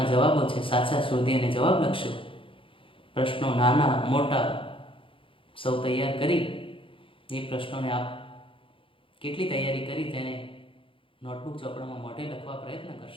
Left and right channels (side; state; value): right; late; 0.25 ms